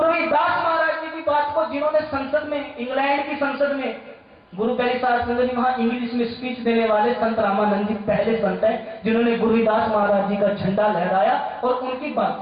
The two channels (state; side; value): identical; both; correlation 1.00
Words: रविदास महाराज जी की बात को जिन्होंने संसद में, इंग्लैंड की संसद में, गुरु प्यारी साहब संगत जी वहां इंग्लिश में स्पीच देने वाले संत रामानंद जी पहले संत हैं जिन्होंने गुरु रविदास महाराज जी का झंडा लहराया। और उनकी